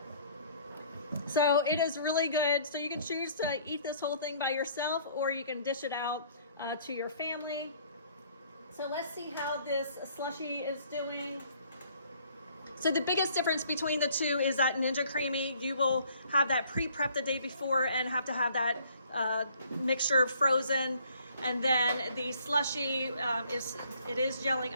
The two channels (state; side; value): inverted; both; correlation -0.59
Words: So it is really good. So you can choose to eat this whole thing by yourself, or you can dish it out to your family. So let's see how this slushie is doing. So the biggest difference between the two is that Ninja CREAMi, you will have that pre-prep the day before and have to have that mixture frozen. And then the slushie it is gelling